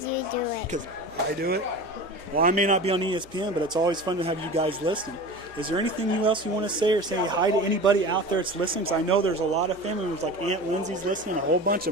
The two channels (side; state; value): right; noise; hum, 24 dB below the sound